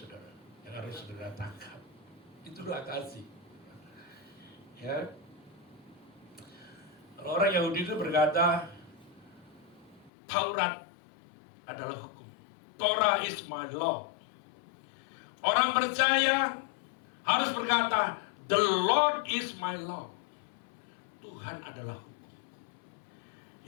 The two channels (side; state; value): right; drops out; at 10.1 s